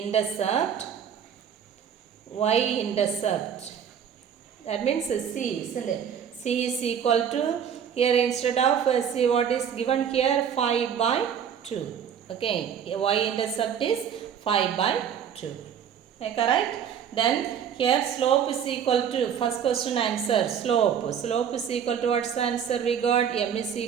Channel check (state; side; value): quieter; left; 8.3 dB